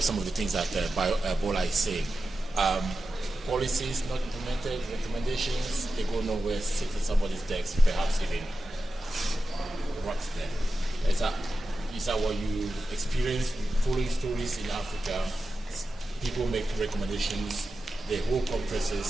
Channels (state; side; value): normal; both; correlation 0.92